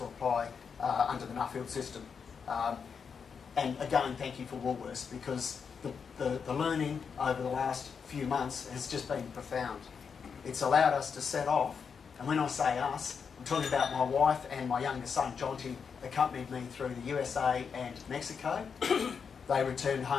apply under the Nuffield system. And again, thank you for Woolworths, because the learning over the last few months has just been profound. It's allowed us to set off, and when I say us, I'm talking about my wife and my youngest son, Jonty, accompanied me through the USA and Mexico. They returned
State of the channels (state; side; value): quieter; right; 6.2 dB